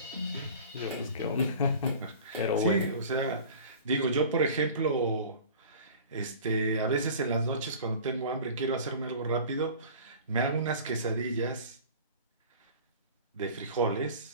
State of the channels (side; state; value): both; inverted; correlation -0.41